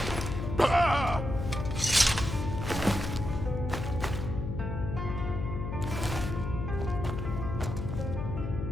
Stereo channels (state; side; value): noise; left; hum, 4 dB below the sound